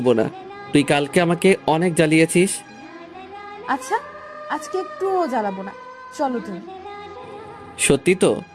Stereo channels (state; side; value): identical; both; correlation 1.00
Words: না, তুই কালকে আমাকে অনেক জ্বালিয়েছিস। আচ্ছা, আজকে একটুও জ্বালাবো না, চলো তুমি। সত্যি তো?